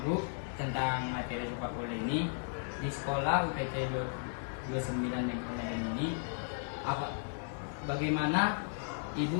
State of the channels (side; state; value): right; silent; 54 dB below the other